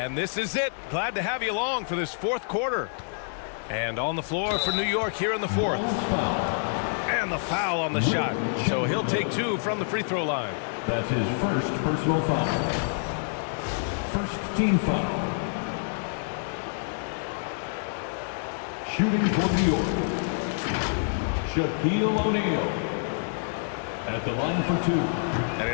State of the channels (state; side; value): silent; right; digital silence